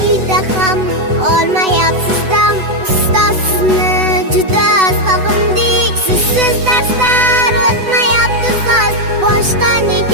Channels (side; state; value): left; late; 8.0 ms